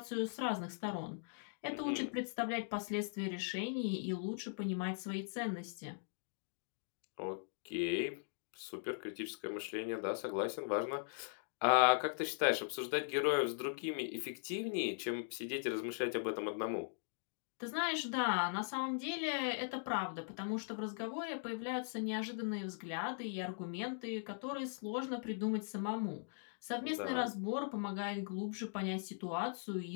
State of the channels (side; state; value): right; silent; digital silence